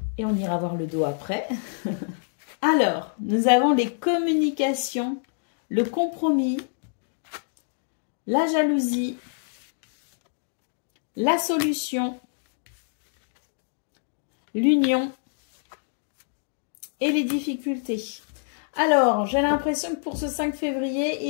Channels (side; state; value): right; silent; digital silence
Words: Et on ira voir le dos après. Alors, nous avons les communications, le compromis, la jalousie, la solution, l'union et les difficultés. Alors, j'ai l'impression que pour ce 5 février,